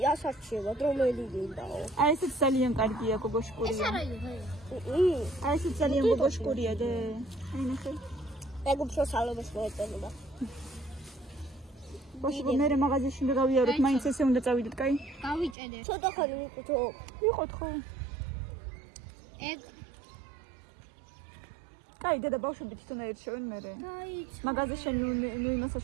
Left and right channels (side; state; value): left; drops out; at 15.6 s